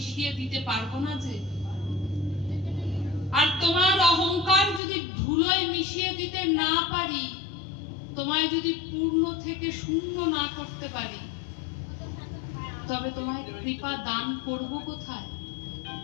দিতে পারবো না যে। আর তোমার অহংকার যদি ধুলোয় মিশিয়ে দিতে না পারি, তোমায় যদি পূর্ণ থেকে শূন্য না করতে পারি, তবে তোমায় কৃপা দান করব কোথায়?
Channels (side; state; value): right; drops out; at 4.8 s